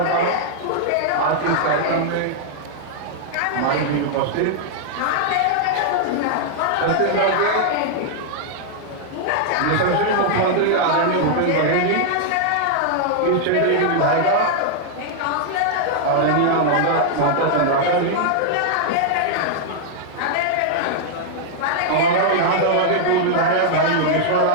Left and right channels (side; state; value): both; different; correlation -0.01